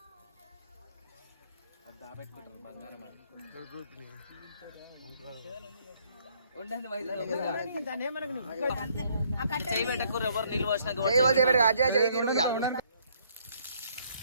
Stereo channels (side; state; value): both; inverted; correlation -0.66